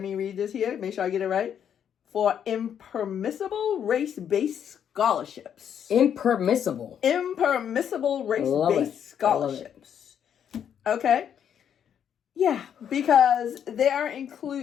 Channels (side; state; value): right; quieter; 8.8 dB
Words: read this here, make sure I get it right, for impermissible race-based scholarships. Impermissible race-based scholarships. Okay. Yeah, because they are